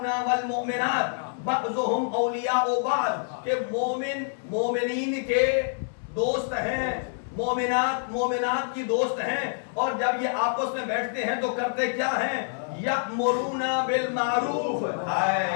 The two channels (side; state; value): right; silent; 59 dB below the other